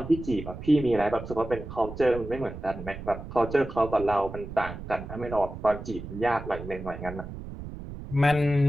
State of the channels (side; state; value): right; noise; rumble, 11 dB below the sound